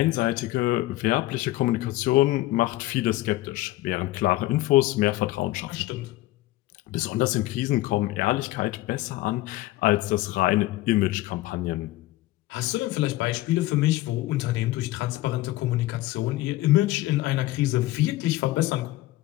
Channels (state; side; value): quieter; right; 17.3 dB